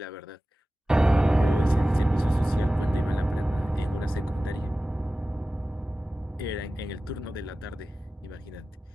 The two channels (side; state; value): both; normal; correlation 0.96